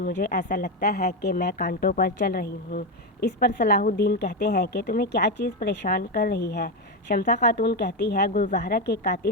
ایسا لگتا ہے کہ میں کانٹوں پر چل رہی ہوں۔ اس پر صلاح الدین کہتے ہیں کہ تمہیں کیا چیز پریشان کر رہی ہے؟ شمسہ خاتون کہتی ہے گلزہرہ کے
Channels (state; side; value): normal; both; correlation 0.10